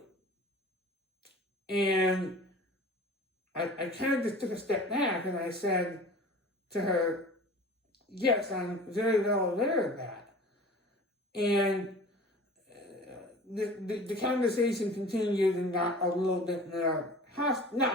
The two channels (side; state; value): both; normal; correlation 0.41